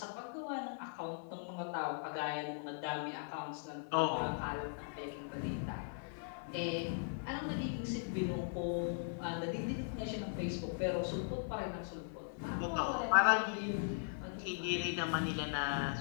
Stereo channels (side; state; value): right; silent; 52 dB below the other